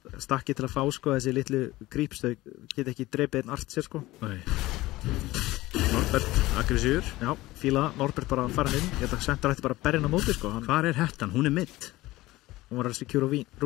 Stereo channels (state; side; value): quieter; right; 18.3 dB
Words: stakki til að fá sko, þessi litlu gríps, þau geta ekki dreipið einn artsér sko. Nei. Norbert aggressífur. Já, fíla, Norbert bara farin inn, ég held að Sentar ætti bara að berja hann á móti sko. Hvar er hettan? Hún er mitt. Hún var að secure